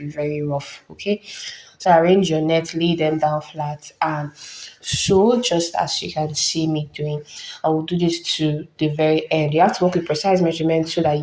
very rough, okay? So arrange your net, lay them down flat and sew just as you can see me doing. I will do this to the very end. You have to work with precise measurements so that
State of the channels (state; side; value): identical; both; correlation 1.00